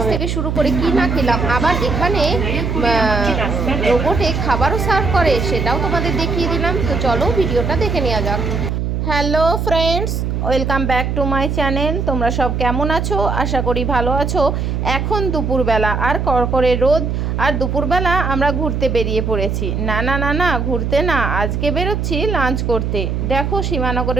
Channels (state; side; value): noise; right; hum, 1 dB below the sound